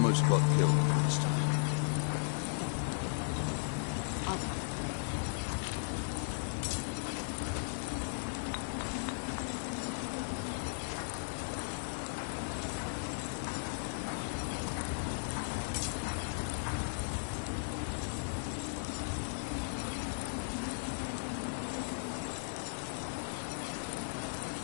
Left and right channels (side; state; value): right; silent; digital silence